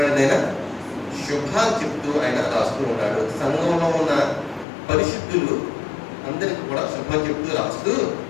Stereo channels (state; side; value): drops out; right; at 4.7 s